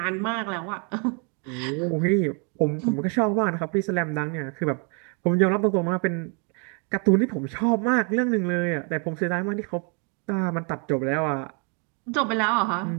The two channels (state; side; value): quieter; left; 36.6 dB